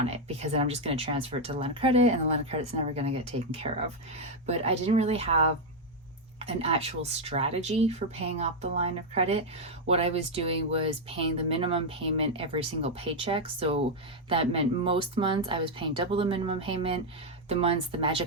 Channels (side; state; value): both; normal; correlation 0.02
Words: it, because then I'm just going to transfer it to the line of credit and the line of credit's never going to get taken care of. But I didn't really have an actual strategy for paying off the line of credit. What I was doing was paying the minimum payment every single paycheck. So that meant most months I was paying double the minimum payment. The